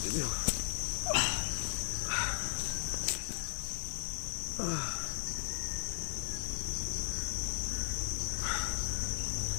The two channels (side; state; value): right; silent; 54 dB below the other